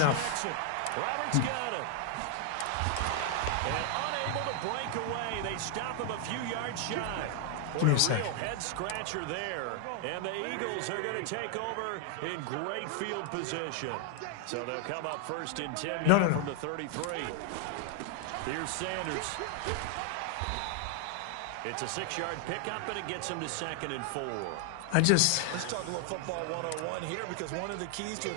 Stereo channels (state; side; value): different; both; correlation 0.00